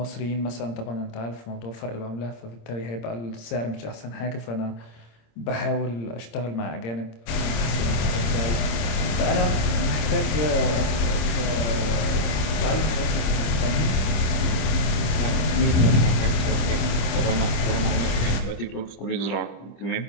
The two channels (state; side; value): late; right; 26 ms